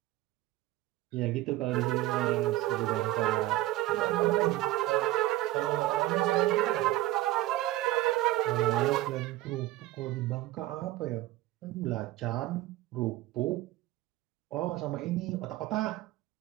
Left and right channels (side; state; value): left; quieter; 16.5 dB